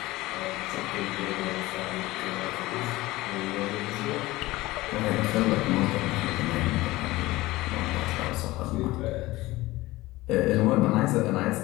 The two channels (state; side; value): quieter; right; 18.9 dB